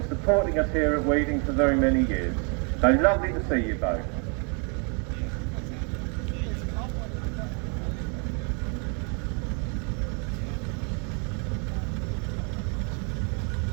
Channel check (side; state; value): left; quieter; 37.5 dB